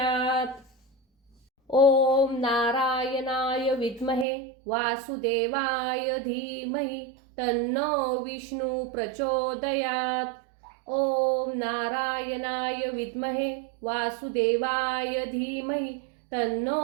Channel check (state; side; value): drops out; left; at 4.2 s